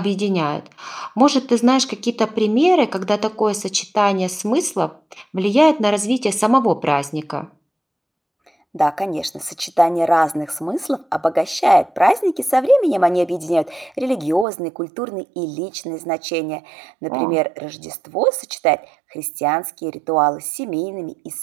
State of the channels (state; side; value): drops out; left; at 14.5 s